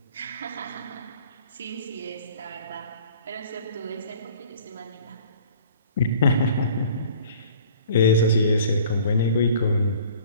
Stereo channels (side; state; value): both; inverted; correlation -0.49